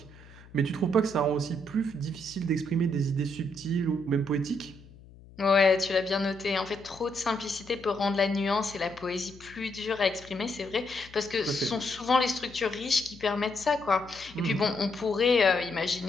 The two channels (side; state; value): left; noise; hum, 21 dB below the sound